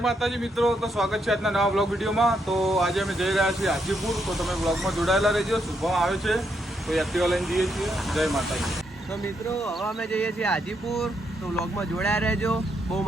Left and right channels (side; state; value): both; normal; correlation 0.78